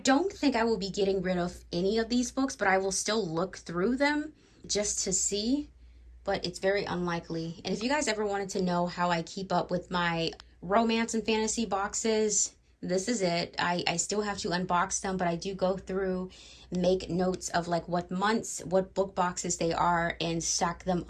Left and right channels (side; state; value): both; identical; correlation 1.00